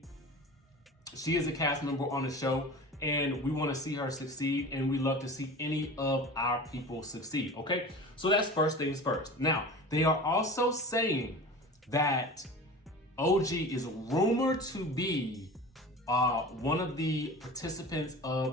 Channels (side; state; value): both; normal; correlation 0.35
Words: she is a cast member on the show and we want to see her succeed, and we love to see any of our people succeed, okay? So that's first things first. Now, they are also saying that OG is rumored to be one of the participants